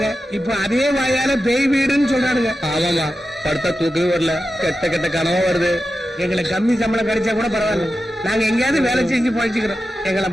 இப்ப அதே வாயால பேய் வீடுன்னு சொல்றானுங்க. ஆமாமா, படுத்தா தூக்கவே வரல, கெட்ட கெட்ட கனவா வருது. எங்களுக்கு கம்மி சம்பளம் கிடைச்சா கூட பரவாயில்ல, நாங்க எங்கேயாவது வேலை செஞ்சு பழிச்சுக்கிறோம். எங்களை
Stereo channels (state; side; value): normal; both; correlation 0.91